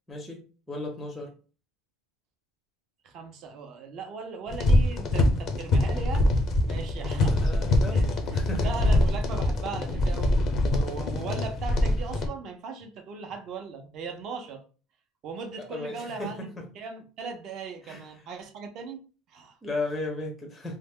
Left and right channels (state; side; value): normal; both; correlation 0.76